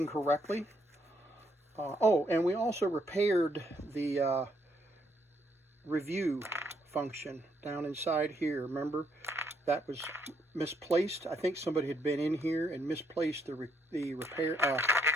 correctly. Oh, and we also repaired the review function down inside here. Remember, that was misplaced. I think somebody had been in here and misplaced the review,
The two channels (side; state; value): both; normal; correlation 0.73